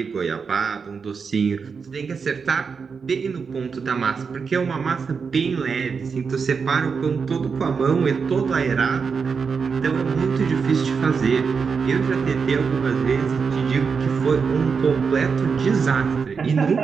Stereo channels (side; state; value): left; quieter; 5.6 dB